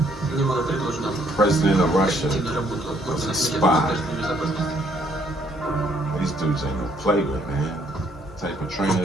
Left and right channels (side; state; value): both; normal; correlation 0.67